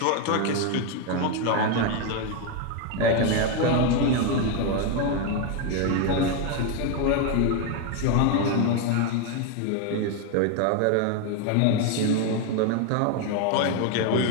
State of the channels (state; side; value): different; both; correlation 0.01